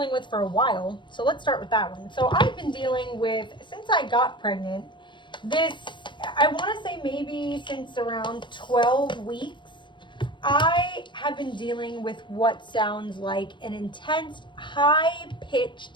with for a while, so let's start with that one. So I've been dealing with, since I got pregnant, this, I want to say maybe since around 12 weeks, I have been dealing with what sounds like an intense, high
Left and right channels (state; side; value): late; right; 0.23 ms